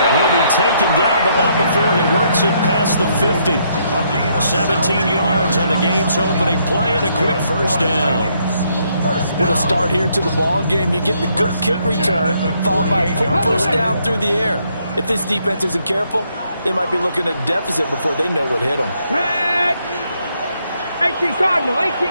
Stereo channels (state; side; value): inverted; both; correlation -0.72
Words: he'll be taken down, but not before he works it past the 50. 17 yards on the game's opening play and a quick first down. With a start here to the ball game, you get the good kick return, followed by a quick first down through the air. If this defense isn't careful, they might be looking at a deficit before they know what hit them. 18 Cardinal,